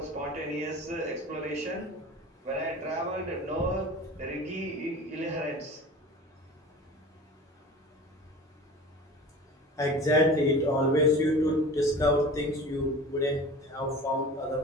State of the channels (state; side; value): normal; both; correlation 0.37